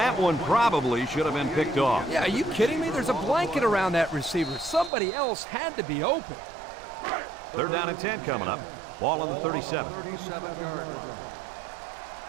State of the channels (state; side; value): drops out; left; at 4.9 s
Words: one probably should have been picked off. Yeah, are you kidding me? There's a blanket around that receiver. Somebody else had to be open. Third down and 10 coming up. Ball on the 37. 37-yard line.